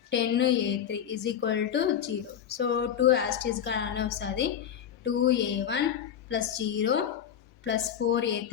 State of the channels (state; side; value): quieter; right; 9.1 dB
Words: 10a3 is equal to 0. So 2 as it is గానే వస్తుంది. 2a1 plus 0 plus